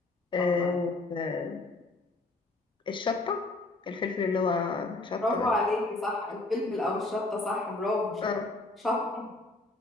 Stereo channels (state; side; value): quieter; right; 3.0 dB